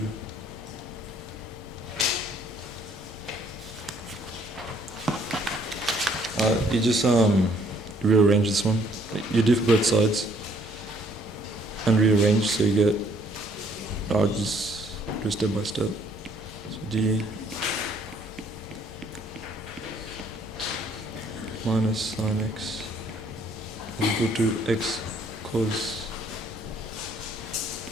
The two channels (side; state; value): both; normal; correlation 0.64